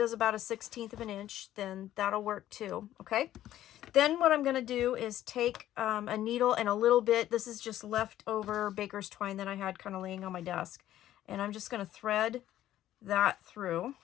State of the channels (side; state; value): right; quieter; 12.9 dB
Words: about 1/16 of an inch, then that'll work too, okay? Then what I'm going to do is take a needle and a little bit, this is just leftover baker's twine that I had kind of laying on my desk, and I'm just going to thread that through